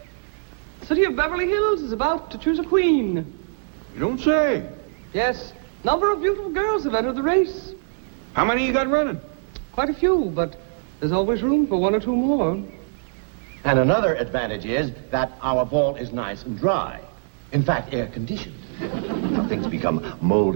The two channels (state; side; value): silent; left; digital silence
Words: the city of Beverly Hills is about to choose a queen. You don't say. Yes, number of beautiful girls have entered the race. How many you got running? Quite a few, but there's always room for one or two more. And another advantage is that our vault is nice and dry. In fact, air-conditioned. Now, things become